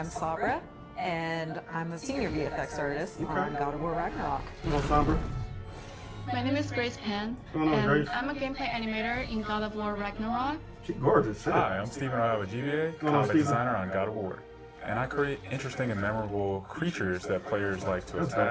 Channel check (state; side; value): identical; both; correlation 1.00